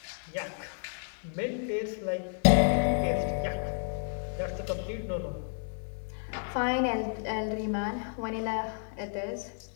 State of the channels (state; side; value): silent; right; digital silence